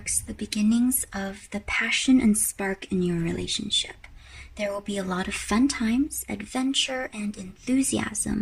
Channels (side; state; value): both; identical; correlation 1.00